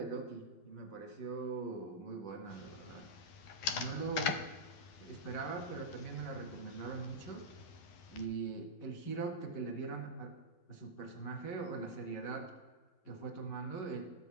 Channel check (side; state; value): right; late; 12 ms